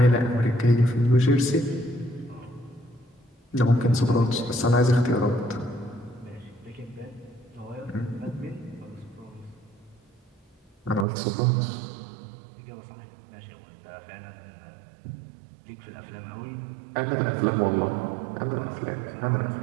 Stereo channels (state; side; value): drops out; left; at 11.1 s